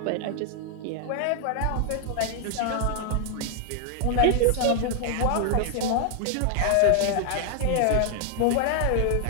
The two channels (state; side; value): different; both; correlation 0.00